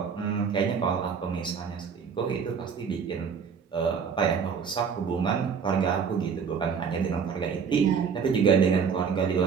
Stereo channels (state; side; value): quieter; left; 6.4 dB